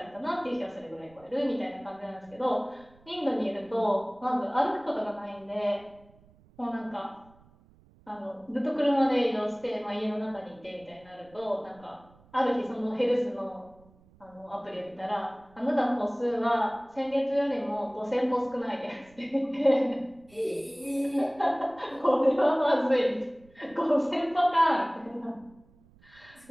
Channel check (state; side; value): noise; right; rumble, 28 dB below the sound